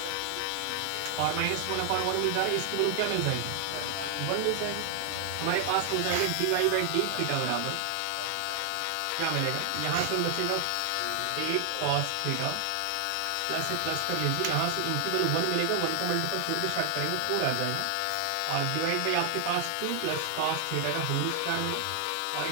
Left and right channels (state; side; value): different; both; correlation 0.00